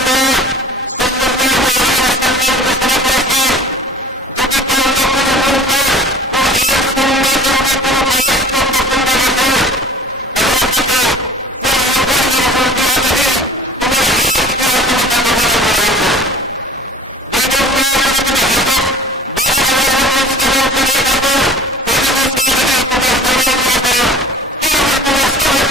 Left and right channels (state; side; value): normal; both; correlation 0.44